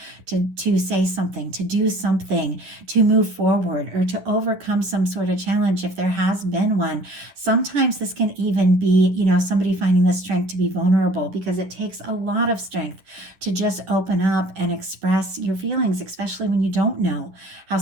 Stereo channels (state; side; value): late; left; 11 ms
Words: to say something, to do something, to move forward, or to overcome some sort of challenge if there has been one. Sometimes this can even be, somebody finding the strength to be vulnerable, because it takes a lot of strength to just open up and express your feelings, especially when you don't know how